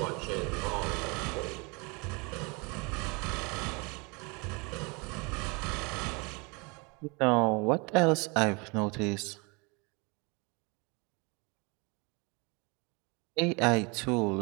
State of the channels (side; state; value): left; quieter; 29.6 dB